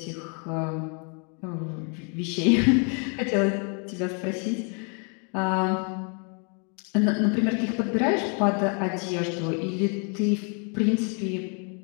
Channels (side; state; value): right; quieter; 37.9 dB